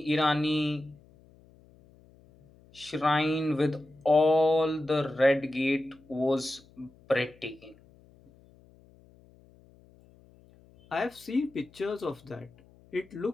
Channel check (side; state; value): left; noise; hum, 27 dB below the sound